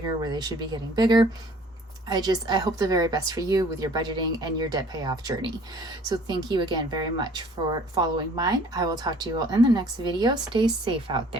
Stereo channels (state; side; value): normal; both; correlation 0.54